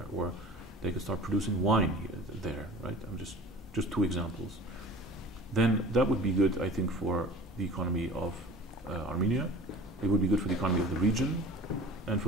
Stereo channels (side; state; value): both; normal; correlation 0.42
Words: or they could start producing wine there, right? I'm just two examples. Then that would be good, I think, for the economy of Armenia. It would be good for the economy of the region, and for